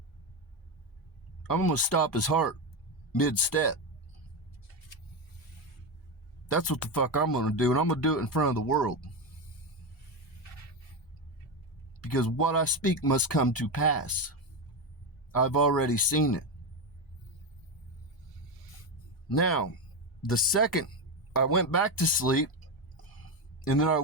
I'm going to stop his heart mid-step. That's what the fuck I'm going to do, and I'm going to do it in front of the world. Because what I speak must come to pass. I've already seen it. Now, the second, I went back to sleep, and then I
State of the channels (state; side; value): normal; both; correlation 0.12